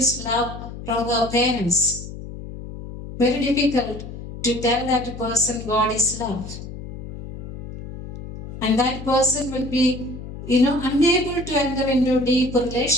love from her parents, very difficult to tell that person God is love. And that person will be, unable to enter into deep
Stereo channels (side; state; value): left; noise; hum, 11 dB below the sound